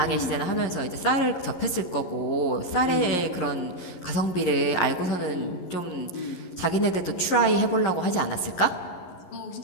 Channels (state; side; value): late; right; 11 ms